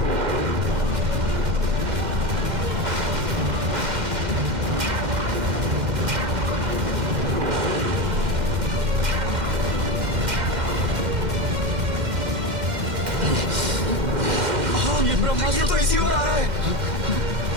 ये ब्रह्मास्त्र तो इसी ओर आ रहा है।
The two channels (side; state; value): left; late; 2.1 ms